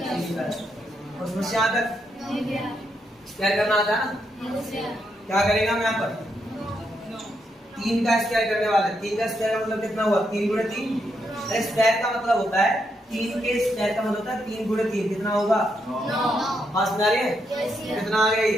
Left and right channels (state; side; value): normal; both; correlation 0.80